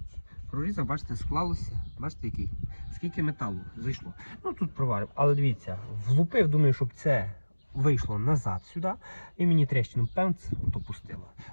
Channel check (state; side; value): inverted; both; correlation -1.00